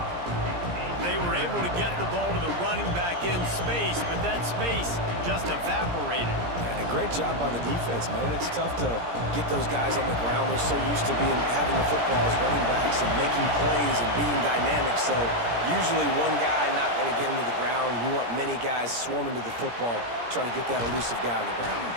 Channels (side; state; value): left; late; 17 ms